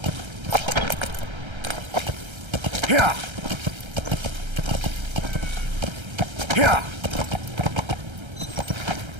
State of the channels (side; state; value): left; late; 1.3 ms